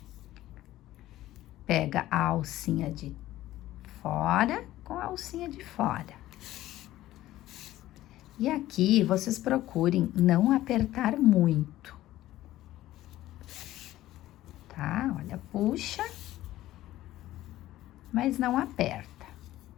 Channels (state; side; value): quieter; right; 15.0 dB